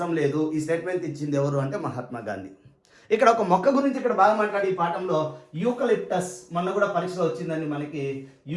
లేదు. ఈ స్టేట్మెంట్ ఇచ్చింది ఎవరు అంటే మహాత్మా గాంధీ. ఇక్కడ ఒక మొక్క గురించి ఇక్కడ బాగా మాట్లాడి ఈ పాఠంలో యూకలిప్టస్, మొన్న కూడా పరీక్షలో వచ్చిందండి మనకి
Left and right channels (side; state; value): both; identical; correlation 1.00